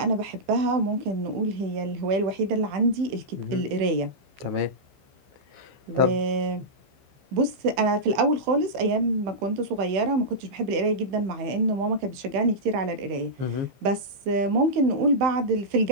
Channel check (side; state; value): left; late; 15 ms